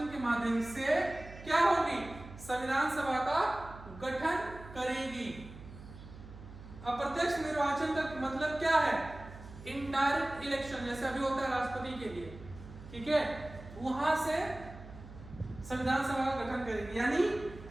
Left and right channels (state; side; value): noise; right; hum, 16 dB below the sound